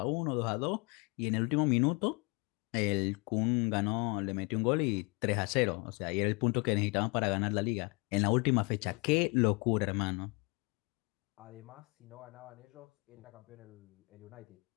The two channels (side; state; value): right; quieter; 29.7 dB